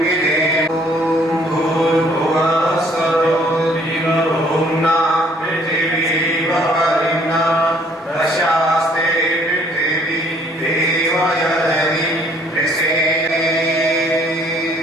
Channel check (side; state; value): both; normal; correlation 0.61